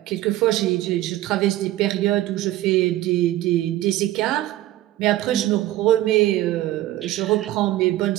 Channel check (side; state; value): left; quieter; 15.2 dB